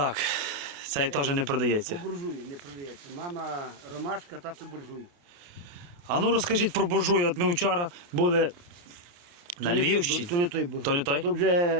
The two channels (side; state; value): left; late; 28 ms